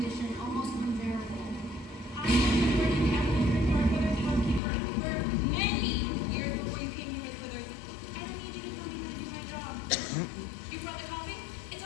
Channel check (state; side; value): drops out; right; at 4.6 s